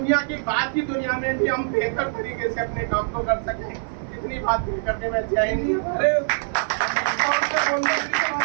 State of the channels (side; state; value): left; silent; 55 dB below the other